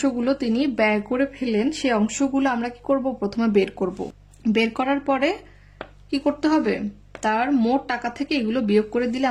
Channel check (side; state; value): both; identical; correlation 1.00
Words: তিনি ব্যয় করে ফেলেন সেই অংশগুলো আমরা কি করব, প্রথমে বের করব। বের করার পরে কি করতে হবে, তার মোট টাকা থেকে এগুলো বিয়োগ করে দিলে